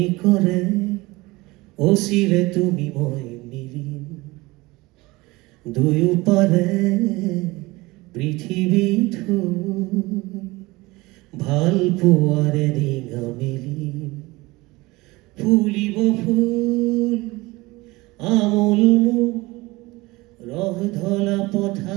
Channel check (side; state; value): left; quieter; 21.7 dB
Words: অচিৰে তুমি মই মিলিম, দুয়ো পাৰে পৃথিৱীত ভাল পোৱাৰে ৰিঙা মেলিম, ফুলিব ফুল আমোল মোক ৰহ ধলা